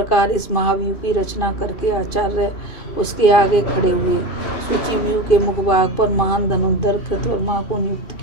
इस महाव्यूह की रचना करके आचार्य उसके आगे खड़े हुए। सूची व्यूह के मुखभाग पर महान धनुर्धर कृतवर्मा को नियुक्त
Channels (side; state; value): right; late; 2.5 ms